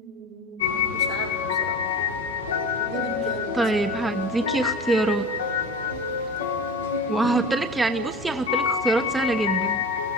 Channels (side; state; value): both; normal; correlation 0.34